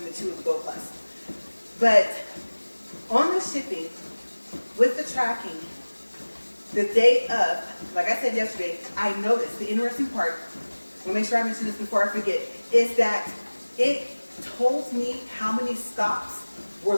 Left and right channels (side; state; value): both; inverted; correlation -1.00